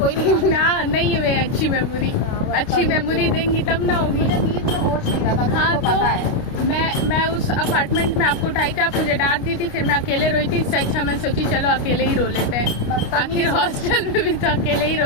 नहीं ना नहीं हुए अच्छी मेमोरी, अच्छी मेमोरी देंगी तब ना होगी। मुझे नींद में होश नहीं रहा था। हाँ पता है तो मैं उस अपार्टमेंट में आपको उठाई थी, आप मुझे डांट दी थी, फिर मैं अकेले रोई थी। इससे अच्छा मैं सोची चलो अकेले ही रो लेते हैं, आखिर हॉस्टल में भी तो अकेले ही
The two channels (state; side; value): late; right; 29 ms